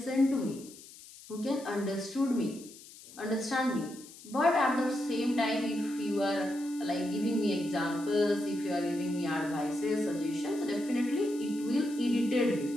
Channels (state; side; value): noise; left; hiss, 18 dB below the sound